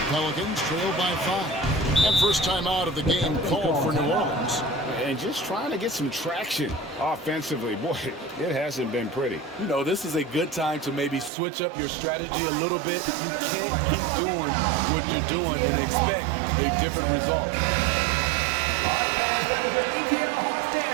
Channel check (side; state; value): left; drops out; at 11.3 s